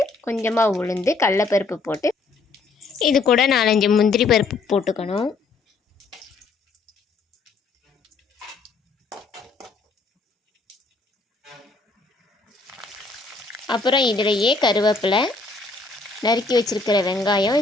கொஞ்சமாக உளுந்து, கடலைப்பருப்பு போட்டு இது கூட 4-5 முந்திரி பருப்பு போட்டுக்கணும். அப்புறம் இதிலேயே கருவேப்பிலை, நறுக்கி வச்சுருக்கிற வெங்காயம்,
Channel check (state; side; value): quieter; right; 3.9 dB